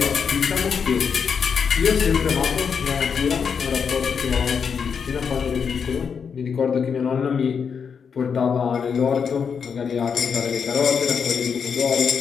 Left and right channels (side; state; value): right; quieter; 6.5 dB